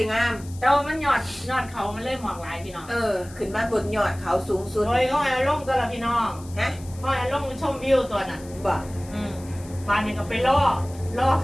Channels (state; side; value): noise; left; hiss, 21 dB below the sound